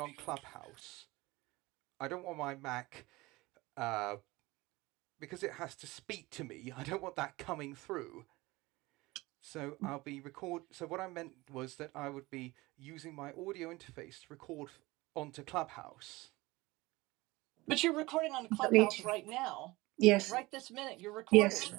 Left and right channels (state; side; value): quieter; left; 21.2 dB